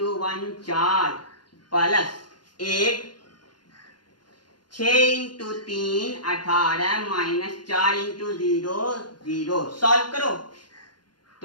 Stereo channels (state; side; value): late; right; 0.71 ms